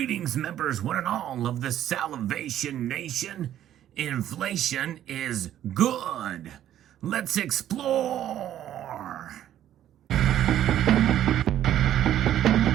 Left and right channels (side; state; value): left; quieter; 11.6 dB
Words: members, one and all of the Salivation Nation. Inflation is good. Let's explore.